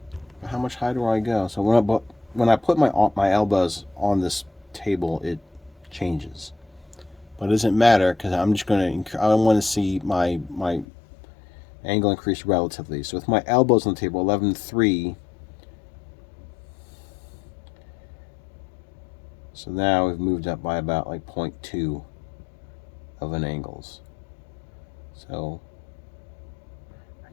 How much higher do I go? So when I put my elbows on this table, it changes. But it doesn't matter because I'm just going to. I want to see my angle increase relatively. So with my elbows on the table, 11.3. So now we've moved up by about like 0.2 of an angles. So I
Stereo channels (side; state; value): right; drops out; at 10.9 s